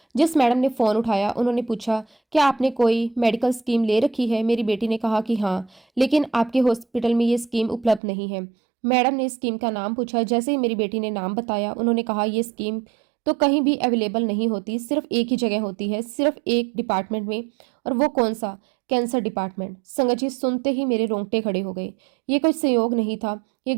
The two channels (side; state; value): left; drops out; at 8.0 s